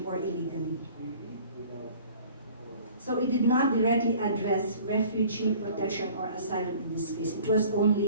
or illegally. So it did not directly address refugee protection or asylum in this case. It was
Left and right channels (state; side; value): inverted; both; correlation -0.49